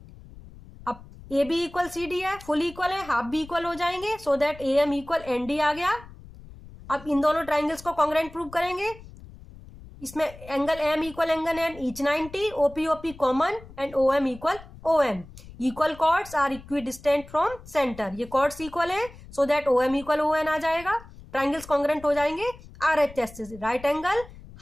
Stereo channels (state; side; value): noise; left; rumble, 18 dB below the sound